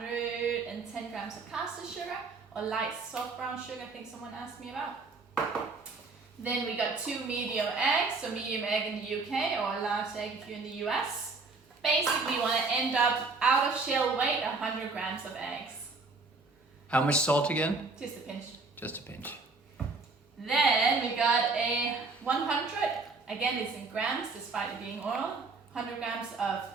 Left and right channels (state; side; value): quieter; left; 3.9 dB